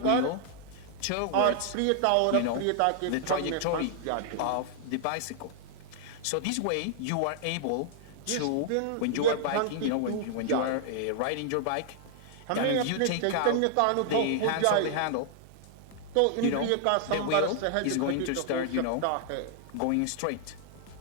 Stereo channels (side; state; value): both; different; correlation -0.01